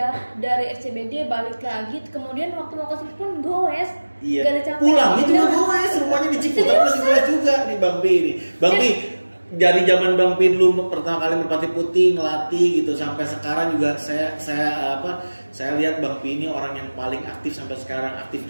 dari SCBD balik lagi, kemudian waktu mau ke sini pun goes. Iya. Gak ada capek. Pulangnya juga goes, rumahnya di Ciputat masih goes juga nih Bang Pi ini. Bang Pi dari zaman Bang Pi dulu pertama kali Merpati Putih ngelatih gitu sampai sekarang juga saya lihat Bang Pi ini orang yang paling aktif sampai sekarang, aktif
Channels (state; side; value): inverted; both; correlation -1.00